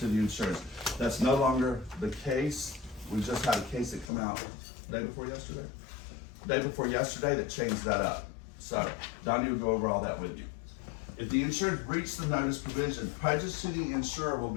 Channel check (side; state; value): right; drops out; at 4.1 s